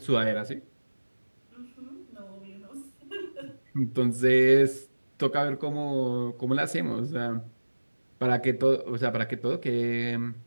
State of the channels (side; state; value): both; inverted; correlation -1.00